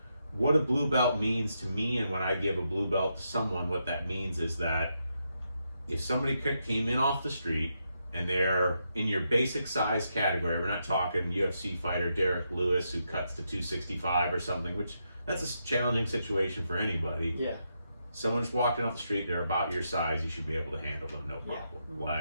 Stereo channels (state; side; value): inverted; both; correlation -0.82